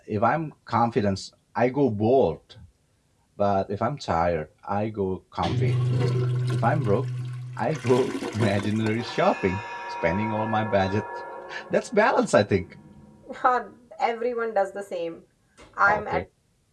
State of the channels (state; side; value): identical; both; correlation 1.00